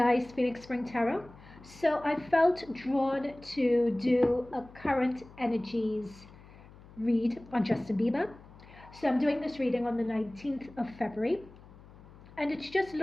Phoenix Spring Tarot. So I felt drawn to do a current energies read on Justin Bieber. So I'm doing this reading on the 19th of February, and it's just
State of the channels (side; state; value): left; noise; hum, 21 dB below the sound